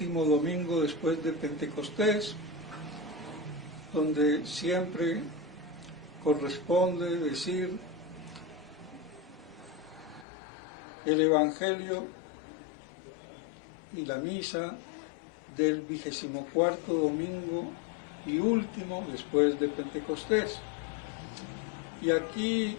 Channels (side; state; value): right; drops out; at 10.2 s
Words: domingo después de Pentecostés, donde siempre corresponde decir el Evangelio y la misa del 24º domingo y último después de Pentecostés. Y aquí